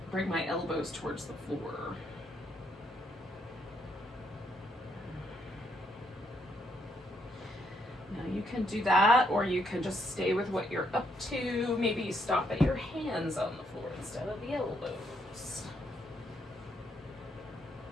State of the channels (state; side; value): normal; both; correlation 0.74